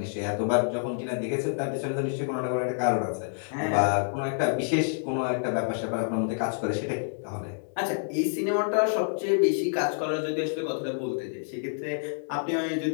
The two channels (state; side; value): silent; right; digital silence